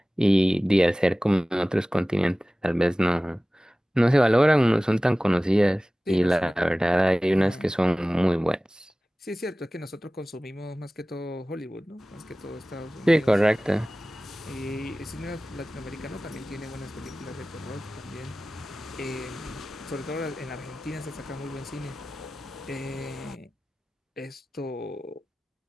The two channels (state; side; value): normal; both; correlation 0.97